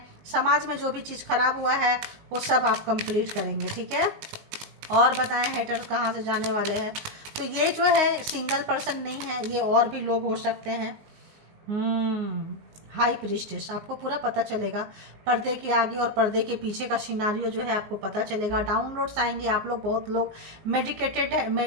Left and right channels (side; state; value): left; late; 19 ms